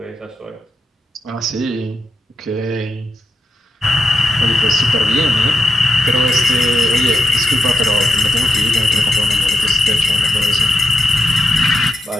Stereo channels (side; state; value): both; normal; correlation 0.84